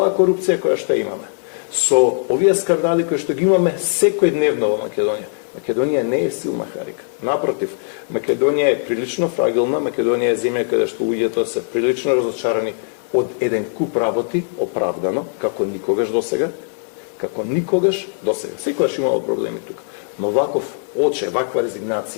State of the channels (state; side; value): silent; right; digital silence